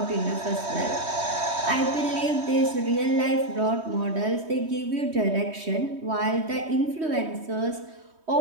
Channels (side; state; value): left; late; 3.2 ms